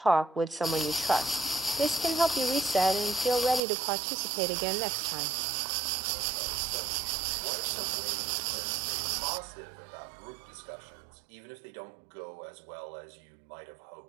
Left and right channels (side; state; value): left; drops out; at 3.6 s